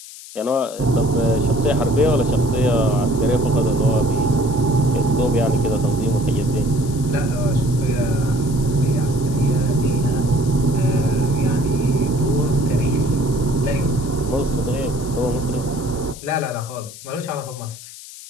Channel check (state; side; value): noise; left; hiss, 16 dB below the sound